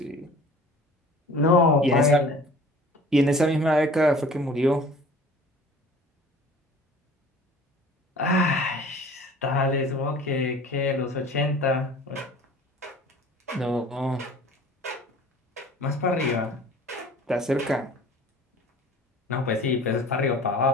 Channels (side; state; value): both; normal; correlation 0.46